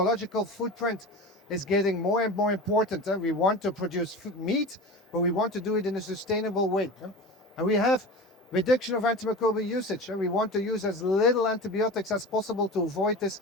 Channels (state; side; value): normal; both; correlation 0.32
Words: footprint is getting more and more important. We want to produce meat, but we want to do it in a sustainable way. And we have reduction of antimicrobial usage. We want to use as little antibiotics as possible to avoid this